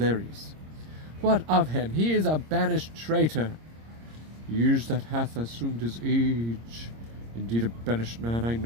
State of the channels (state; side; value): late; left; 26 ms